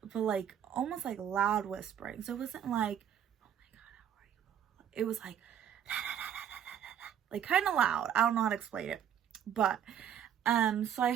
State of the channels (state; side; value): quieter; left; 9.4 dB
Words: but like almost like loud whispering. So it wasn't like, oh my God, how are you? It was like, like kind of loud. I don't know how to explain it. But so I